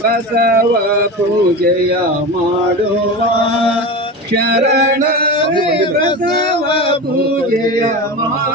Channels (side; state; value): both; normal; correlation 0.26